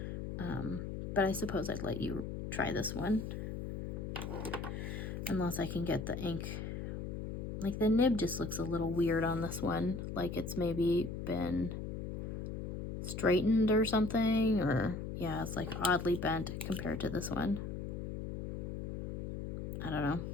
But I suppose I'd let you try this one. Unless I can get the ink. Like the nib just looks a little weird on this one. Like it's maybe been straightened or something. Or yeah, it's like oddly bent compared to this one. I don't know.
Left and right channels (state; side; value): noise; left; hum, 5 dB below the sound